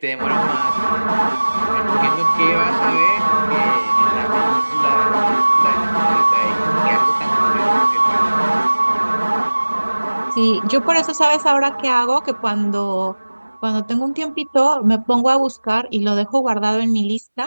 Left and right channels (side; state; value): both; inverted; correlation -1.00